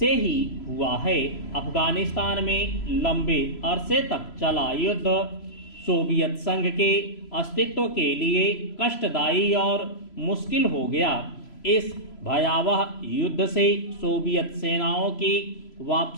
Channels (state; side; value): late; right; 3.0 ms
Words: ही हुआ है। अफगानिस्तान में लंबे अरसे तक चला युद्ध सोवियत संघ के अस्तित्व के लिए कष्टदायी और मुश्किल हो गया। इस भयावह युद्ध से सोवियत सेनाओं की